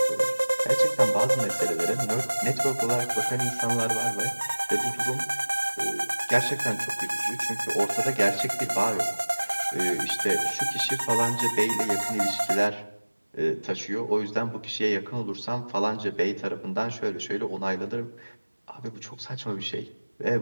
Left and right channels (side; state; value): both; inverted; correlation -1.00